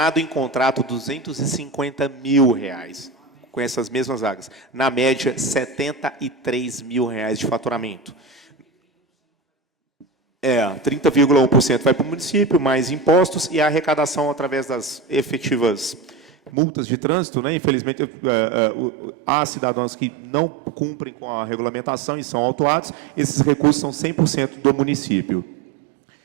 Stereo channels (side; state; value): left; drops out; at 16.5 s